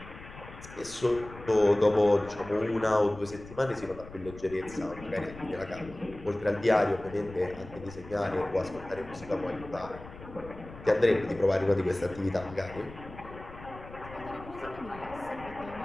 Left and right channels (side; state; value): left; noise; rumble, 16 dB below the sound